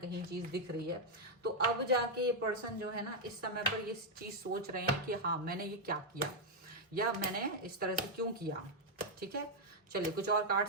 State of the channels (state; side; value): normal; both; correlation 0.00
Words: चीज दिख रही है। तो अब जाके ये पर्सन जो है ना, इस समय पर ये चीज सोच रहे हैं कि हाँ, मैंने ये क्या किया, या मैंने इस तरह से क्यों किया। ठीक है, चलिए कुछ और